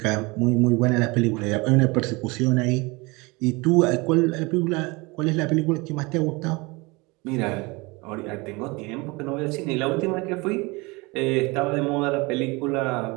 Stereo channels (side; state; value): left; quieter; 25.4 dB